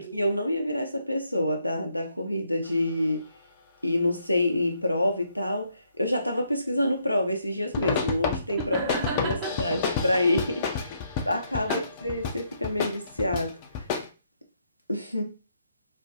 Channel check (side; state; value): both; inverted; correlation -0.74